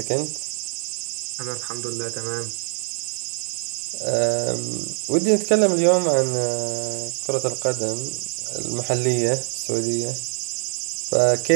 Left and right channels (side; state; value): left; silent; digital silence